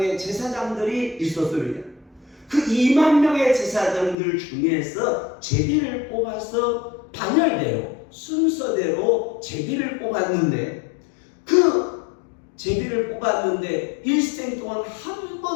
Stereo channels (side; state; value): right; drops out; at 4.2 s